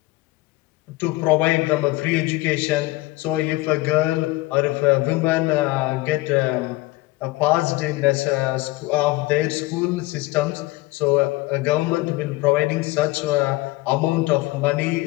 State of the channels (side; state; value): right; quieter; 20.1 dB